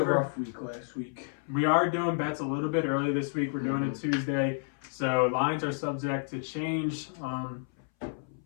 rough week last week. we are doing bets a little bit early this week. We're doing it Tuesday, so lines are subject to change.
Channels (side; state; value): right; silent; 57 dB below the other